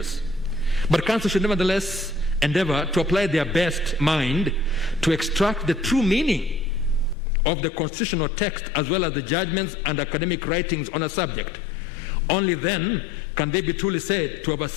But counsel should nevertheless endeavor to apply their best mind to extract the true meaning of the constitutional text as well as the judgments and academic writings on a subject. Only then can they be truly said to have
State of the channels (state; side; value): drops out; right; at 7.2 s